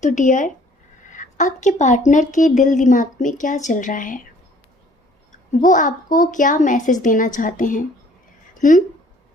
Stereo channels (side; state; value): both; normal; correlation 0.57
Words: तो डियर, आपके पार्टनर के दिल दिमाग में क्या चल रहा है? वो आपको क्या मैसेज देना चाहते हैं?